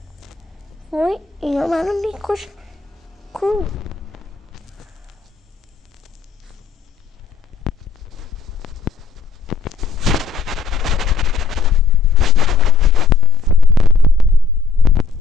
وای اینا منو میکشن. کو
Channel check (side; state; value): right; quieter; 4.8 dB